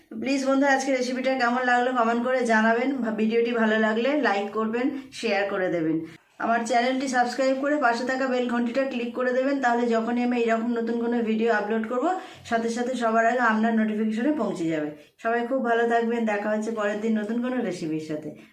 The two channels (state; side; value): identical; both; correlation 1.00